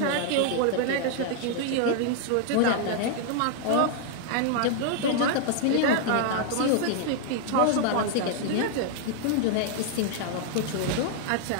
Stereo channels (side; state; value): both; different; correlation 0.00